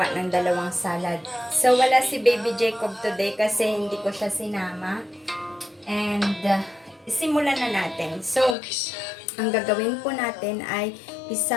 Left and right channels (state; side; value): drops out; right; at 8.6 s